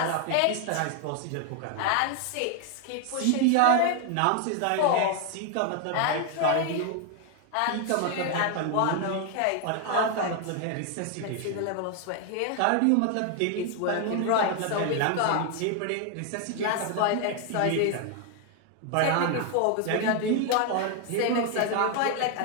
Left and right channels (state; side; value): different; both; correlation 0.01